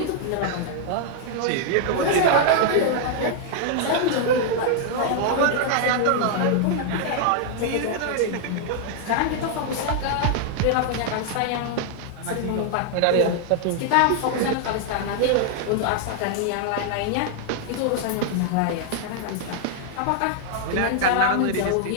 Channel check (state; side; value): different; both; correlation 0.00